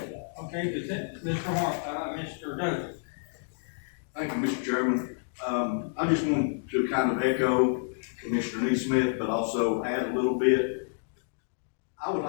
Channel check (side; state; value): right; silent; digital silence